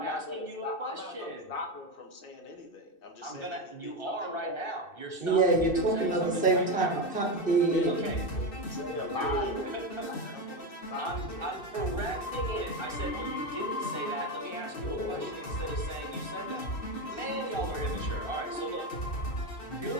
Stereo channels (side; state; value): right; late; 2.6 ms